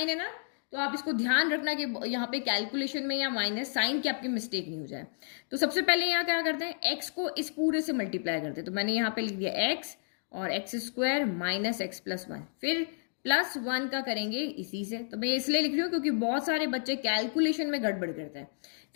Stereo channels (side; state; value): right; silent; digital silence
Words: है ना, तो आप इसको ध्यान रखना कि यहाँ पे कैलकुलेशन में या माइनस साइन की आपकी मिस्टेक नहीं हो जाए। तो सबसे पहले यहाँ क्या करते हैं? x को इस पूरे से मल्टीप्लाई करते हैं। तो मैंने यहाँ पे लिख दिया x और x² माइनस x+1, फिर +1 का करेंगे इसी से। तो मैं इसलिए लिख रही हूँ क्योंकि बहुत सारे बच्चे कैलकुलेशन में गड़बड़ करते हैं।